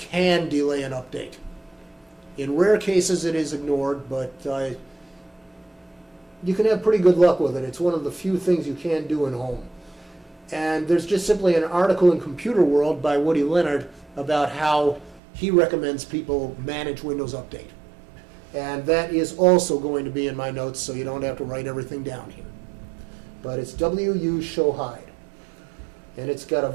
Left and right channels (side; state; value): left; drops out; at 15.2 s